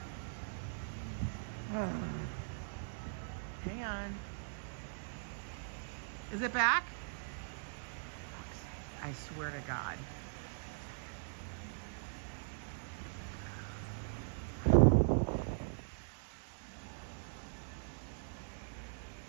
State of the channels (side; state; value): left; silent; digital silence